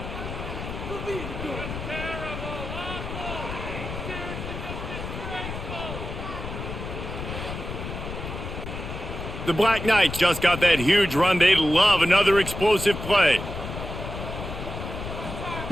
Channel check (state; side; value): noise; left; rumble, 7 dB below the sound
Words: The Black Knights just got that huge run. They love another explosive play.